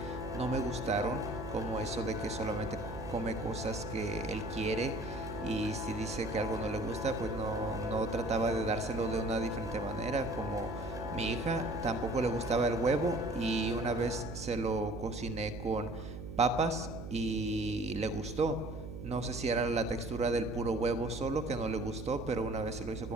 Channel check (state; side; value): noise; right; hum, 9 dB below the sound